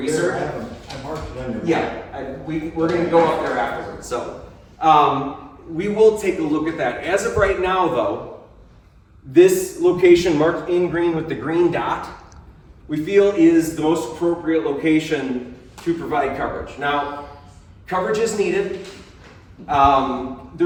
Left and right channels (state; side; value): identical; both; correlation 1.00